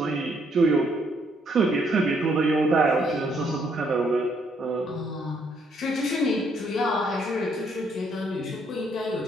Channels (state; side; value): normal; both; correlation 0.70